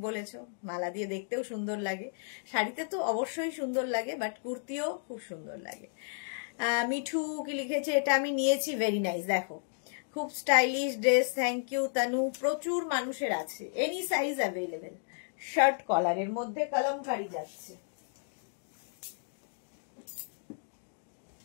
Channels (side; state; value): right; silent; digital silence